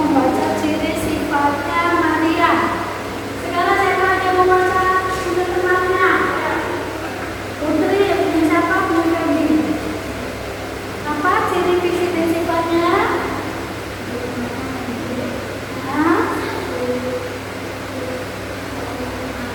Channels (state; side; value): identical; both; correlation 1.00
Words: ciri sifatnya Maria. Sekarang siapa yang mau baca untuk temannya? Putri, punya siapa? Punya Feby. Apa ciri fisik dan sifatnya? Hah?